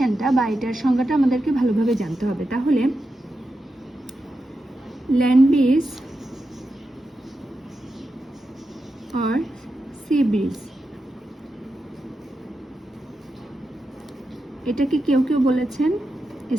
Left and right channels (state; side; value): normal; both; correlation 0.89